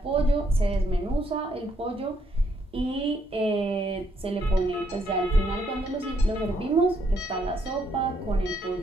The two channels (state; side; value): normal; both; correlation 0.73